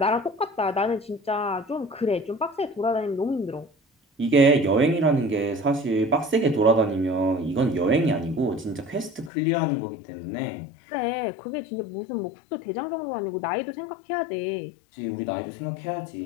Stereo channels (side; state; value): right; drops out; at 9.3 s